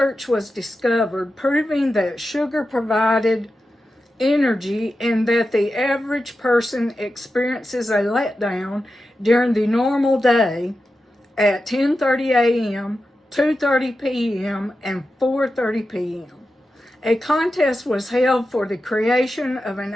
was discovered proving that sugar provided energy and that the average person experiences a letdown during the normal day at 10:30 a.m., 2:30 p.m., and 4:30 p.m. A contest was held for the creation of an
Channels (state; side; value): normal; both; correlation 0.91